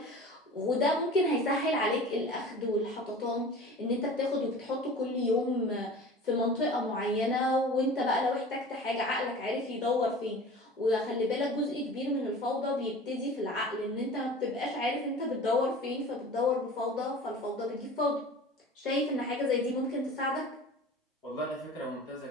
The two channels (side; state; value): both; normal; correlation 0.39